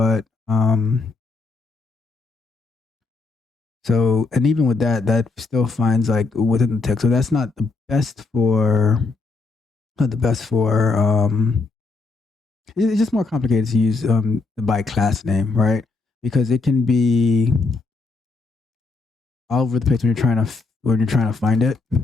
so, and even with that, that still finds like within the text. So that's not the best for, not the best for, it's just more complicated to use the by class name, right? Because it can be all over the place when you're trying to find it,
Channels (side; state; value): right; quieter; 3.8 dB